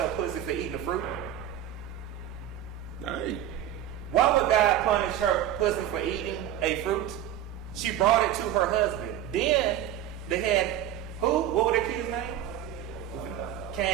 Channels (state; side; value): quieter; left; 11.1 dB